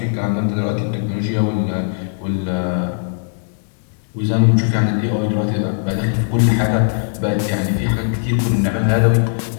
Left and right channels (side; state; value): right; silent; digital silence